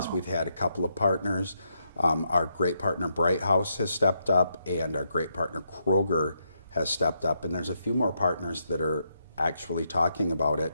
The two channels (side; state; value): both; inverted; correlation -0.80